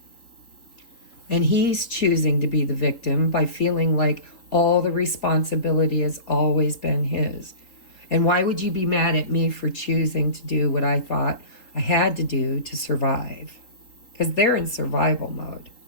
And he's choosing to be the victim by feeling like all the responsibility has always been his. And why would you be mad at me for choosing to do what I thought I had to do to survive? Because they're in survival mode.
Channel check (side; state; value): right; late; 3.8 ms